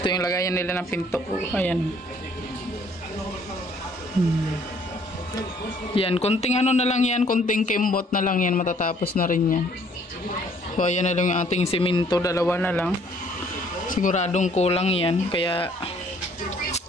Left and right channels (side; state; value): both; normal; correlation 0.61